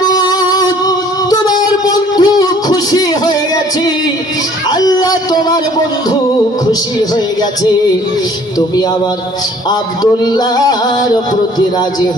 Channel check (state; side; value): normal; both; correlation 0.55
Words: তোমার বন্ধু খুশি হয়ে গেছে, আল্লাহ তোমার বন্ধু খুশি হয়ে গেছে, তুমি আমার আব্দুল্লাহর প্রতি রাজি